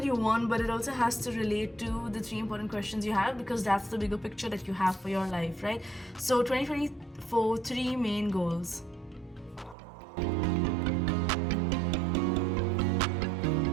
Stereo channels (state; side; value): drops out; left; at 9.8 s